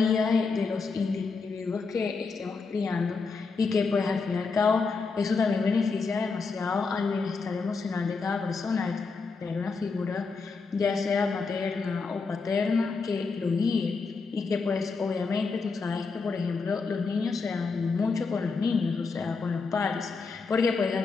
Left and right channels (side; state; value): right; quieter; 4.6 dB